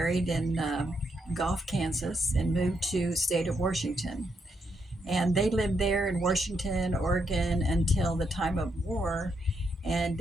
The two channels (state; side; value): normal; both; correlation 0.78